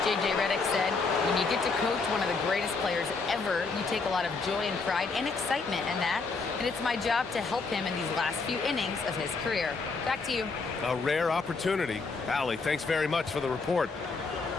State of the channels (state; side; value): quieter; right; 4.3 dB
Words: J.J. Redick said, when you get to coach one of the greatest players ever, you take a lot of joy and pride and excitement in that. And it's my job to help him in these last few innings of his career. Back to you. A rare opportunity. Allie, thanks very much for the report.